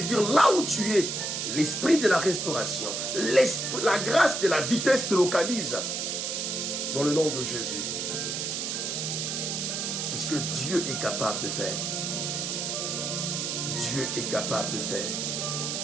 là où tu es, l'esprit de la restauration, la grâce de la vitesse te localise dans le nom de Jésus. C'est ce que Dieu est capable de faire. Dieu est capable de faire.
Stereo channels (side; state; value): right; noise; hiss, 2 dB below the sound